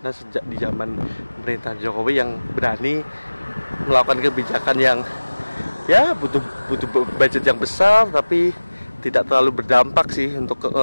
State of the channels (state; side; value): inverted; both; correlation -1.00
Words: sejak di zaman pemerintahan Jokowi yang berani melakukan kebijakan yang ya butuh butuh budget yang besar, tapi tidak terlalu berdampak sih untuk